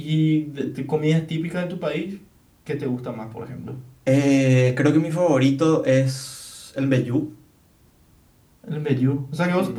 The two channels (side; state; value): both; identical; correlation 1.00